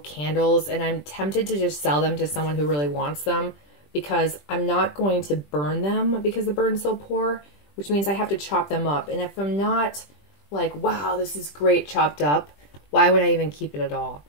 and I'm tempted to just sell them to someone who really wants them, because I'm not going to burn them because the burn's so poor, which means I have to chop them up. And if I'm not like, wow, this is great chopped up, why would I even keep it at all?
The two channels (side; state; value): right; late; 20 ms